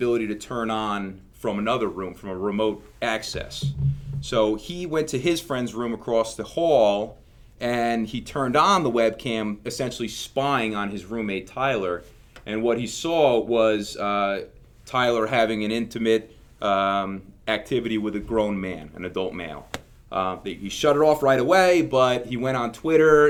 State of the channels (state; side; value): identical; both; correlation 1.00